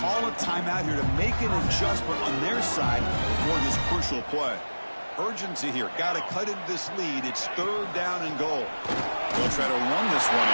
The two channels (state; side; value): inverted; both; correlation -1.00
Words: a timeout here to make an adjustment on their side for this crucial play. Urgency here. Got to cut into this lead. It's 3rd down and goal. They'll try to run this one